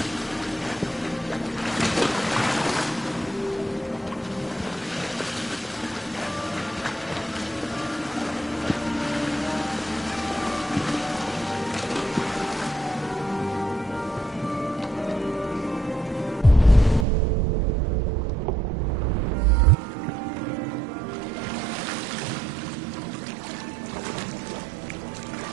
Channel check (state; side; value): drops out; left; at 17.1 s